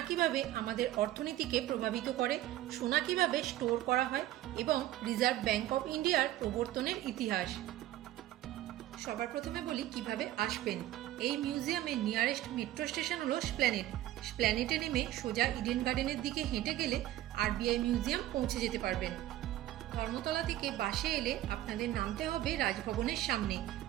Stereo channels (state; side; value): quieter; left; 14.3 dB